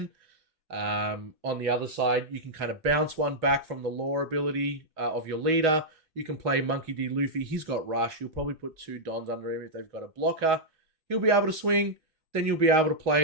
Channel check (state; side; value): late; left; 2.6 ms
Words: On the other side, you can kind of bounce one back from the Law ability of your leader. You can play Monkey D. Luffy. He's got Rush. You'll probably put 2 Dons under him if they've got a blocker. He'll be able to swing. Then you'll be able to